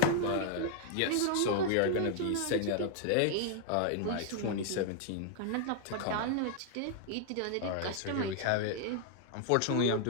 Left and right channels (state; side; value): different; both; correlation 0.00